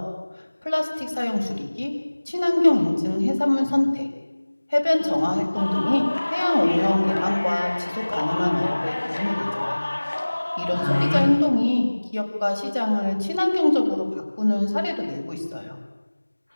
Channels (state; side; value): inverted; both; correlation -1.00